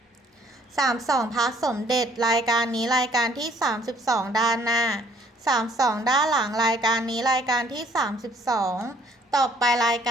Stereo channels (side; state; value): both; normal; correlation 0.61